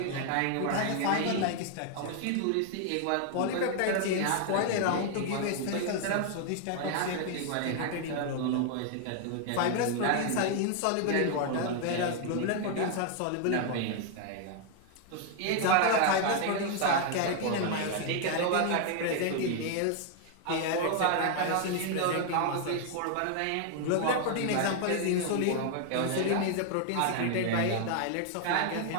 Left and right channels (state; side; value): different; both; correlation 0.00